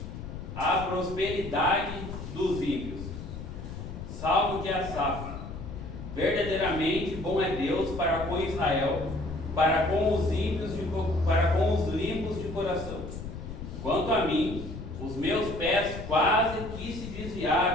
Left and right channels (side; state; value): left; noise; rumble, 9 dB below the sound